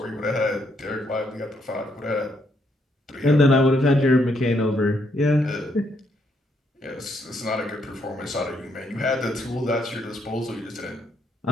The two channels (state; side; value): normal; both; correlation 0.75